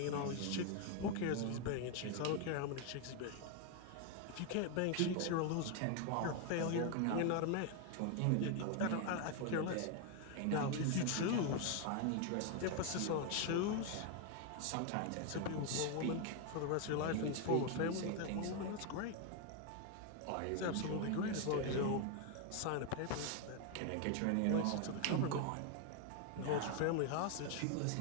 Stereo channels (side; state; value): both; different; correlation 0.01